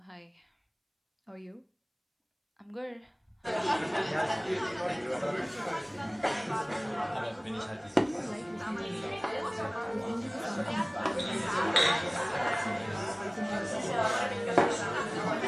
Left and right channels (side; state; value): both; identical; correlation 1.00